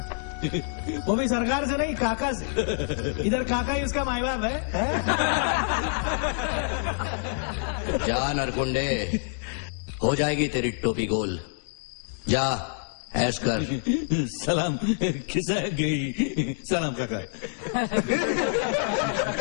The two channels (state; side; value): silent; right; digital silence